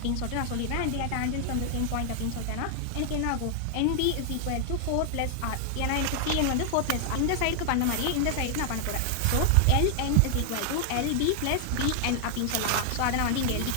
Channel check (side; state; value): both; different; correlation 0.00